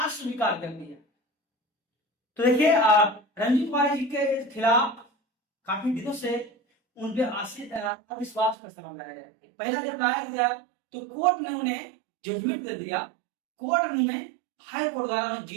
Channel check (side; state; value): left; drops out; at 8.6 s